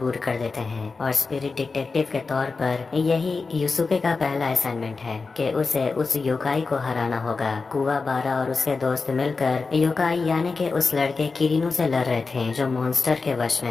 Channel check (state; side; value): quieter; right; 4.3 dB